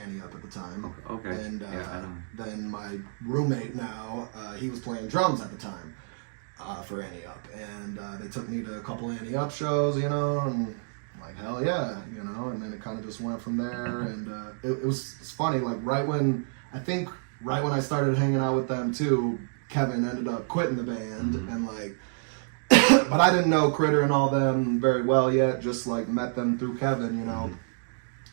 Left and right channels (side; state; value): left; silent; digital silence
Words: Up at the time. Okay. And Yeah, I know. then my roommate now, he was playing drums at the time for Annie Up. And they took me to a couple Annie Up shows, you know, and I'm like, hell yeah, you know. And then it kind of just went from there. And it's funny, like right when I started hanging out with them too, Kevin ended up quitting the band and like, but I didn't know Critter and all them very well yet, just like met them through Kevin, you know,